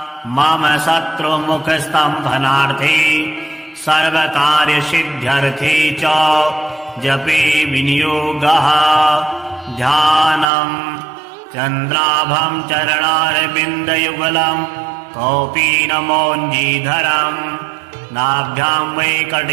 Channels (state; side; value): drops out; left; at 10.5 s